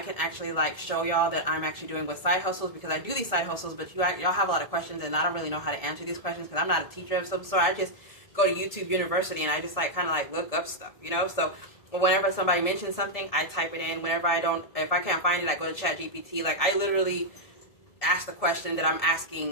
actually like show y'all that I'm actually doing with side hustles, because I do these side hustles, but y'all have a lot of questions, and I don't really know how to answer these questions because I'm not a teacher of some sort. I just go to YouTube University, and I just like kind of like look up stuff, you know. So whenever somebody mentions something, I type it in. Whenever if I can't find it, I go to ChatGPT. Like, I literally ask the question that I'm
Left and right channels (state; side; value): late; right; 1.7 ms